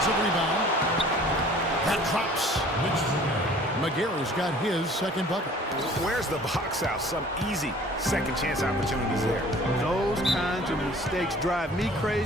rebound. That drops. McGarry's got his second bucket. Where's the box out? Some easy second chance opportunities there. Those kinds of mistakes drive me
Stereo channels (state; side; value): normal; both; correlation 0.50